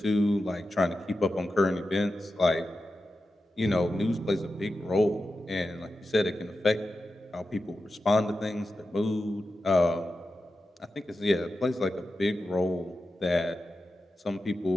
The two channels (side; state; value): both; normal; correlation 0.91